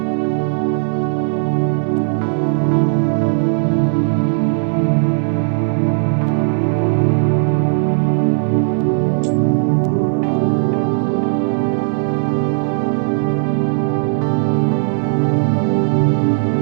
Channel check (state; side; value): silent; left; digital silence